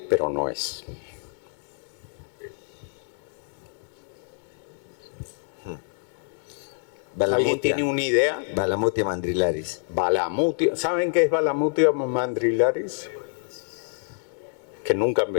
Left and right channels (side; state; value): right; silent; digital silence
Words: pero no es. ¿Alguien tiene una idea? Balamutia mandrilaris. Balamutia. ¿Saben qué es Balamutia mandrilaris? Que nunca han